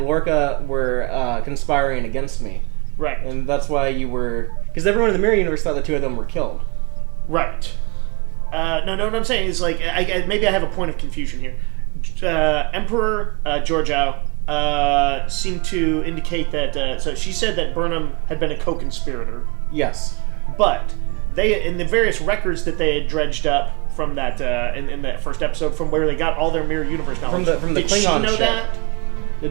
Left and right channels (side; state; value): left; quieter; 28.9 dB